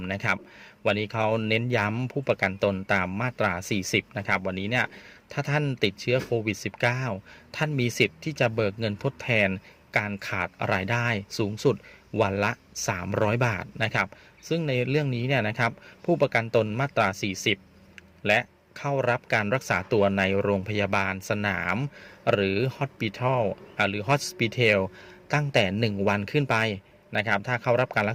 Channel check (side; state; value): both; identical; correlation 1.00